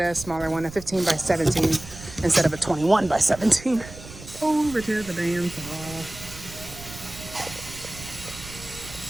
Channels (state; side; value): noise; right; rumble, 15 dB below the sound